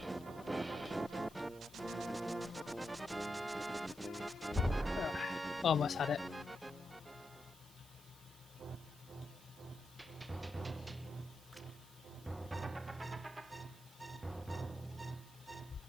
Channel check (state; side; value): noise; right; hiss, 20 dB below the sound